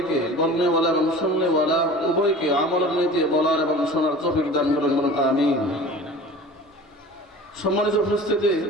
বলনেওয়ালা এবং শুননেওয়ালা উভয়কে আমলের নীতি বলার এবং শোনার তৌফিক দান করুন, বলুন আমিন। সম্মানিত উপস্থিতি,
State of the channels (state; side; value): normal; both; correlation 0.40